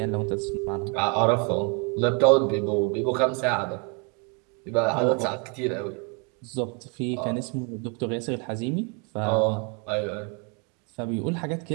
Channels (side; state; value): left; quieter; 34.8 dB